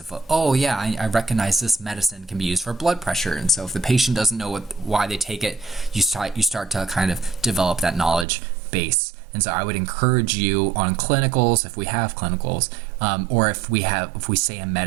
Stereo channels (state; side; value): drops out; left; at 8.2 s